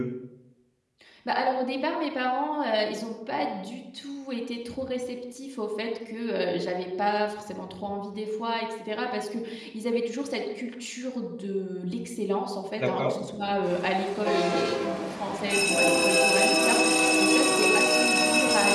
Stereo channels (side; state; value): both; identical; correlation 1.00